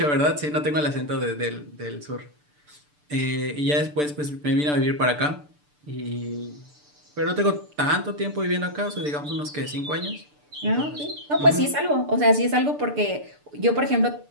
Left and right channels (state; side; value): late; left; 6.8 ms